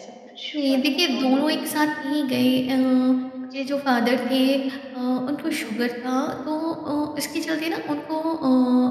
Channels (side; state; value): both; identical; correlation 1.00